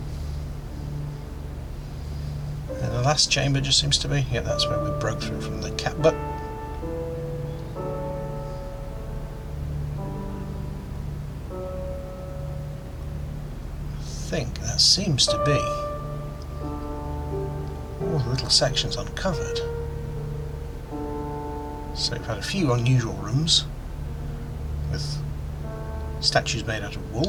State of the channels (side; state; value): both; identical; correlation 1.00